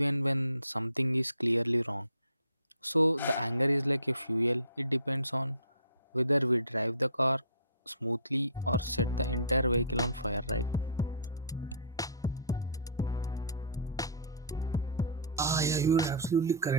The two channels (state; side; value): inverted; both; correlation -0.43